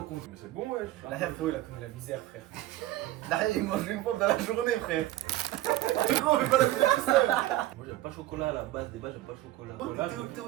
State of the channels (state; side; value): quieter; left; 15.5 dB